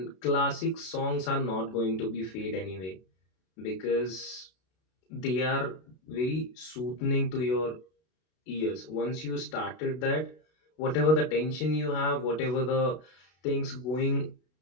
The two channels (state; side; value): late; right; 32 ms